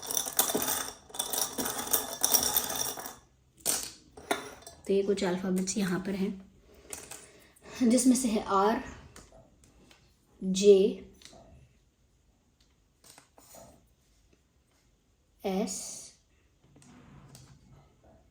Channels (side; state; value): both; identical; correlation 1.00